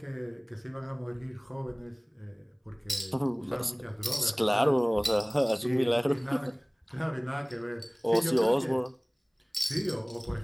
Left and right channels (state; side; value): identical; both; correlation 1.00